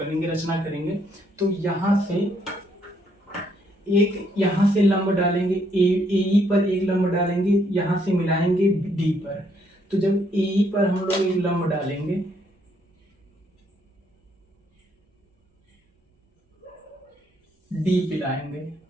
रचना करेंगे। तो यहाँ से लंब डालेंगे, ए पर एक लंब डालेंगे, यहाँ से मिलाएंगे डी पर। तो जब ए पर हम लोग एक लंब डालेंगे, डी पे लाएंगे,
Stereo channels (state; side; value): normal; both; correlation 0.71